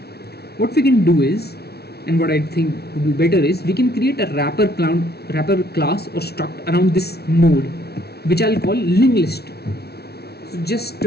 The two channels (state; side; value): late; right; 0.47 ms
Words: What we can do is, and what I think would be better is, we can create a wrapper class or struct around this node, which I'll call linked list. So just